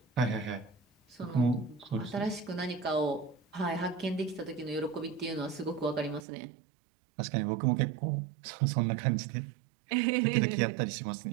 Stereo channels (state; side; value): drops out; left; at 6.2 s